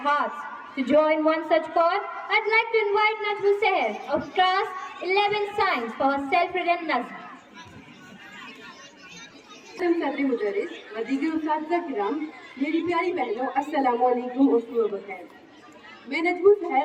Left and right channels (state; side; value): identical; both; correlation 1.00